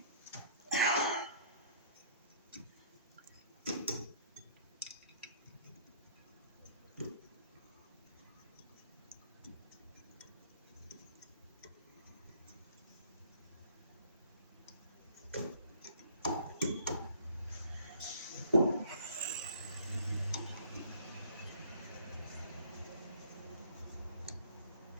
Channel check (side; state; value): both; inverted; correlation -0.57